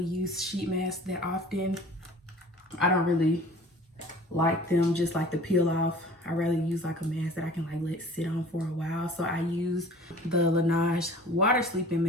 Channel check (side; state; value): both; normal; correlation 0.46